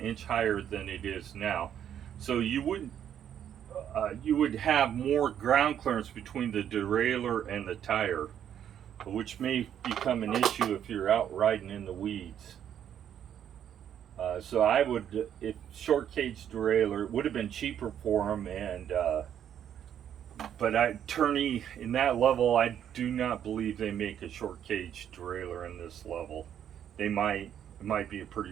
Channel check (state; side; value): quieter; left; 9.6 dB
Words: higher than it is now. So you would have more ground clearance between the derailleur and the tire, which may become an issue if you're out riding in the weeds. So I would, if short cage derailleur, it would have been cheaper for them, and but Turney in that level, I do not believe they make a short cage derailleur in this level. They might. It might be a pretty